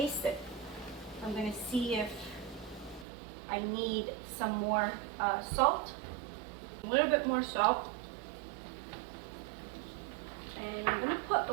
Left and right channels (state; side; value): drops out; left; at 3.1 s